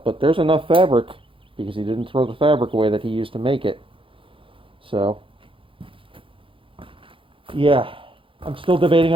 But there's enough fabric, because he didn't throw the fabric away that he used to make it. So, yeah, I'm still debating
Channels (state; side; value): late; left; 0.25 ms